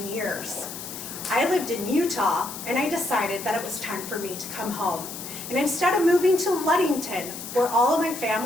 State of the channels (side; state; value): left; noise; hiss, 10 dB below the sound